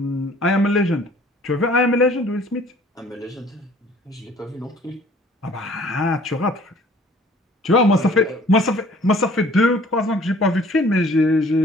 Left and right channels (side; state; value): both; normal; correlation 0.54